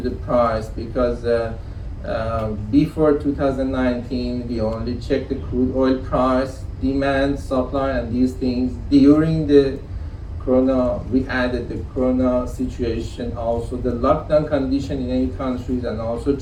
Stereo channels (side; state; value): both; identical; correlation 1.00